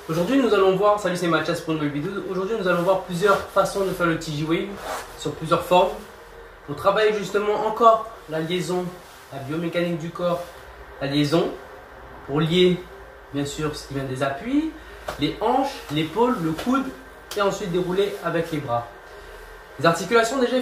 Aujourd'hui, nous allons voir, salut c'est Mathias pour une nouvelle vidéo. Aujourd'hui, nous allons voir plusieurs façons de faire le TJ Wave sur plusieurs formes. On travaille justement encore la liaison, la biomécanique du corps, la liaison pour lier bien sûr ce qui vient des appuis, les hanches, l'épaule, le coude et ensuite dérouler avec les bras. Les articulations, déjà, il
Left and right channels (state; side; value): identical; both; correlation 1.00